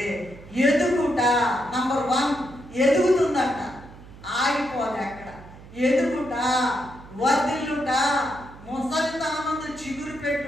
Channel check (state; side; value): noise; right; hum, 19 dB below the sound